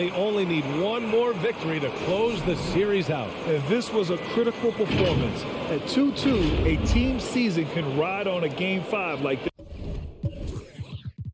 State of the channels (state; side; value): identical; both; correlation 1.00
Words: only need one more victory to close the series out. And this was a critical performance. At 2-2, a team season can ride on a Game 5 like this.